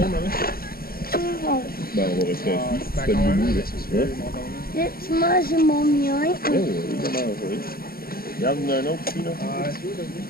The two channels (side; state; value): right; late; 0.43 ms